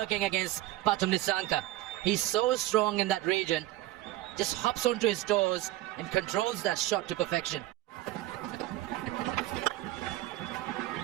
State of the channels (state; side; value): quieter; left; 16.1 dB